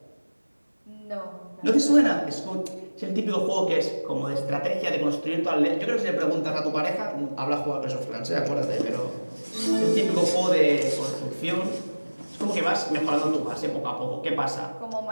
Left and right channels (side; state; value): both; inverted; correlation -1.00